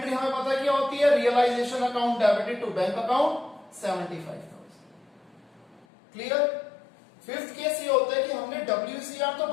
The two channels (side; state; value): right; drops out; at 5.9 s